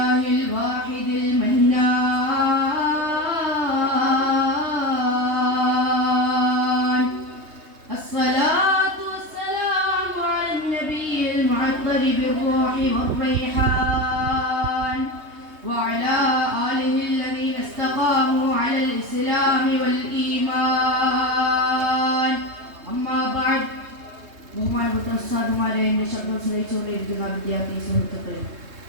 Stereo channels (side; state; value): left; late; 3.2 ms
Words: الواحد المنان. الصلاة والسلام على النبي المعطر بالروح والريحان وعلى آله الذين استقاموا على الإسلام والإيمان. أما بعد. ബഹുമാനപ്പെട്ട ഉസ്താദുമാരെ, എന്റെ ശബ്ദം ശ്രവിച്ചുകൊണ്ടിരിക്കുന്ന വിദ്യാർത്ഥി സുഹൃത്തുക്കളെ,